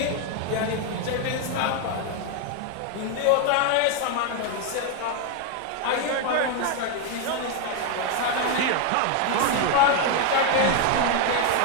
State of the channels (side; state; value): both; different; correlation 0.01